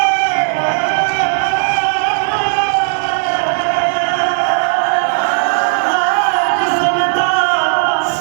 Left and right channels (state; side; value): silent; left; digital silence